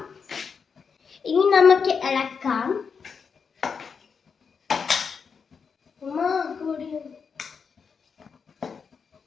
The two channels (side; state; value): right; quieter; 5.9 dB